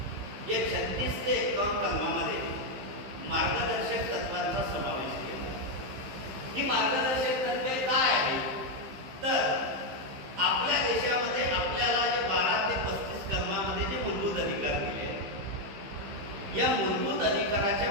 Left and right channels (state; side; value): late; left; 15 ms